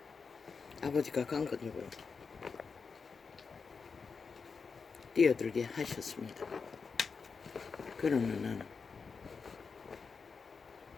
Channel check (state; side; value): quieter; right; 5.2 dB